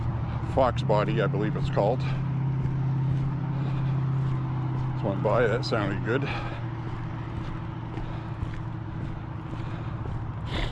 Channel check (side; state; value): both; identical; correlation 1.00